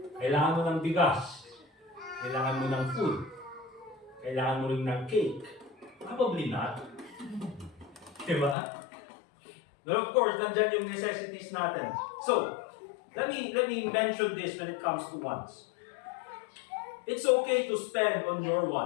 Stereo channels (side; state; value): right; drops out; at 8.6 s